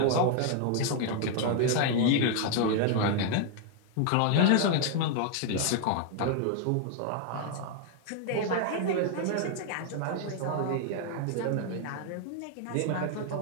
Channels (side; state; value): both; different; correlation 0.00